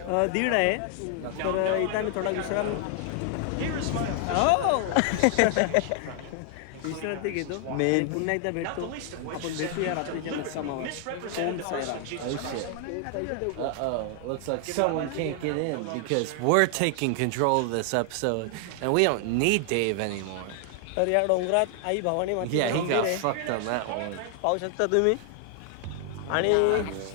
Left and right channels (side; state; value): both; different; correlation 0.00